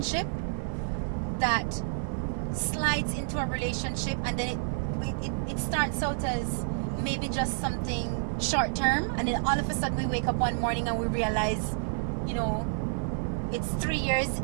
that slides into a relationship, and then it starts out as maybe just something short term, and then all of a sudden we wake up one morning and we realize, you know, it's 3 years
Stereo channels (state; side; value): silent; left; 56 dB below the other